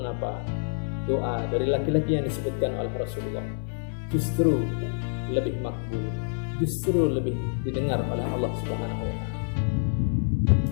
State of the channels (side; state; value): right; silent; 58 dB below the other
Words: doa dari laki-laki yang disebutkan oleh Rasulullah justru lebih makbul, justru lebih didengar oleh Allah Subhanahu wa taala?